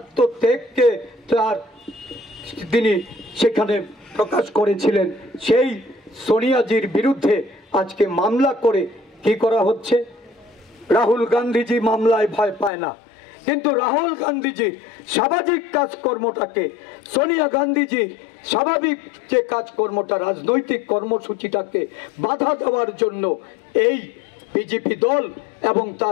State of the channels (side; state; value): right; drops out; at 12.7 s